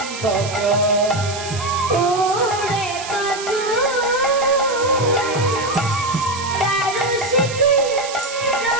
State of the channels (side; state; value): right; noise; hiss, 10 dB below the sound